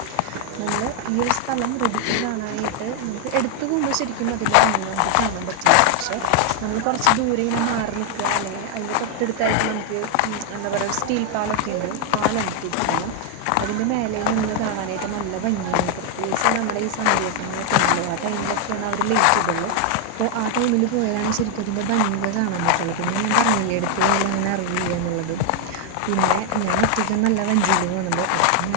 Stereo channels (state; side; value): different; both; correlation 0.00